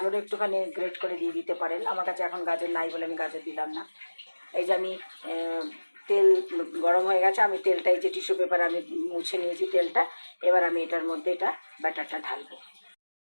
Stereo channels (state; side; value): inverted; both; correlation -1.00